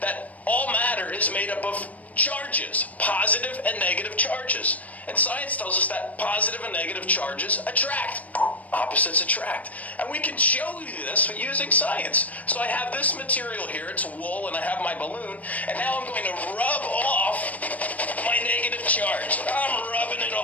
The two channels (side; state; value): right; late; 0.072 ms